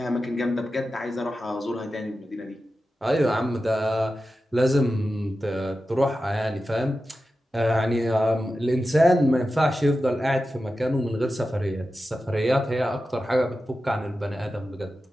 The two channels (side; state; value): both; normal; correlation 0.92